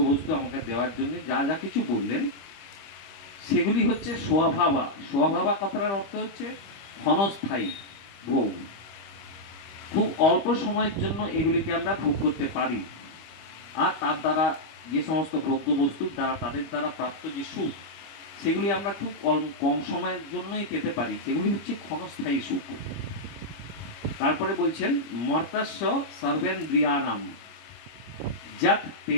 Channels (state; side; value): late; right; 24 ms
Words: আমাকে দেওয়ার জন্য যা যা কিছু বললেন, সেগুলি হচ্ছে স্বভাবা। স্বভাবা কথাটার অর্থ হচ্ছে ক্ষণস্থায়ী ভোগ, খুব অল্প সময়ের জন্য এগুলিকে আমরা ভোগ করতে পারি। আর তার দ্বারা যে সমস্ত ভোগ্যবস্তুর দ্বারা তাদের দ্বারা প্রাপ্ত যে সুখ, সেগুলি আমরা খুব কম সময়ের জন্যই পেতে পারি, সেগুলি হচ্ছে ক্ষণস্থায়ী সুখ। তারপরে বলছেন মর্তাস্য সর্বেন্দ্রিয়ানাম যত